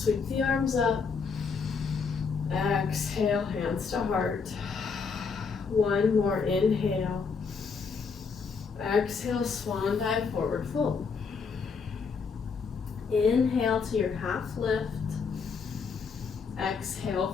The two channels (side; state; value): right; quieter; 5.3 dB